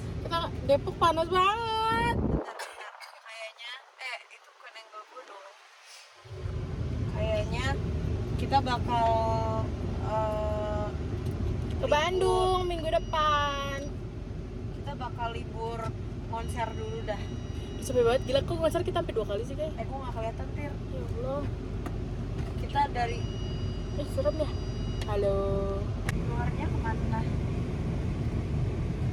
kita Depok panas banget. Kayaknya, itu koneng gue dong. Kayaknya kita bakal Ke Bandung minggu depan. kita bakal libur konser dulu dah. Sepi banget, gila kok konser kita sampai 2 kali sih kayak. Gue nggak kelihatan tir. Ya Allah. Kita dari Serem ya. Halo. luarnya kemana?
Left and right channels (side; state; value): both; identical; correlation 1.00